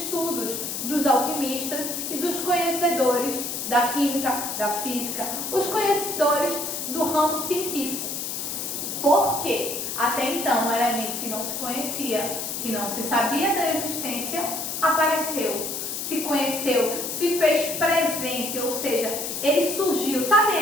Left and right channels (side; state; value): left; noise; hiss, 4 dB below the sound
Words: dos alquimistas e dos conhecedores da química, da física, os conhecedores do ramo científico. Por quê? Até então, um elemento que não se conhecia, que não se sabia da existência, apareceu, se conheceu, se fez presente, ou seja, ele surgiu. Sabe,